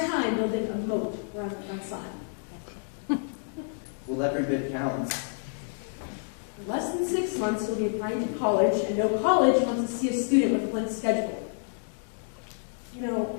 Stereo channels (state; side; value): silent; right; digital silence